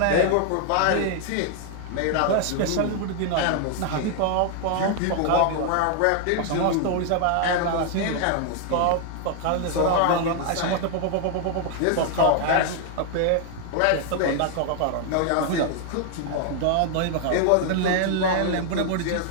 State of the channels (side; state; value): both; different; correlation 0.00